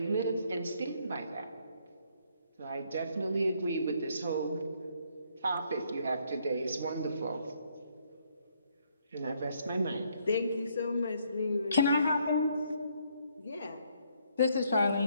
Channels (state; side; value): inverted; both; correlation -0.70